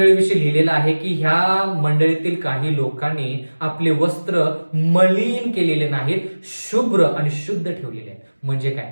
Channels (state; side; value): inverted; both; correlation -1.00